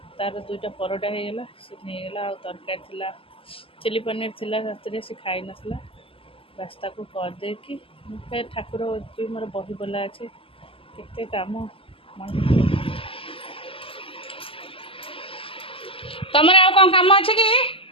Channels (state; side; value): late; right; 0.26 ms